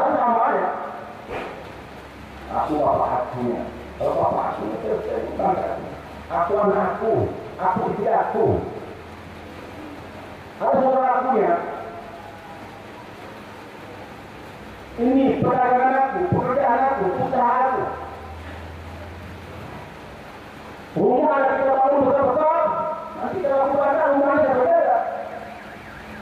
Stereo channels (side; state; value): both; identical; correlation 1.00